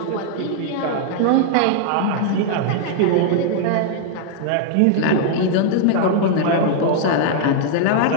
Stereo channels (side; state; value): both; different; correlation -0.01